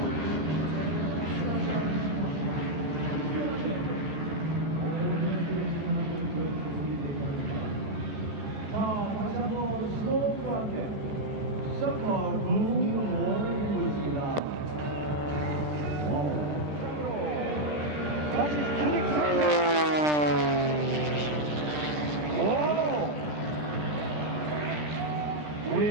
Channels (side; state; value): left; late; 13 ms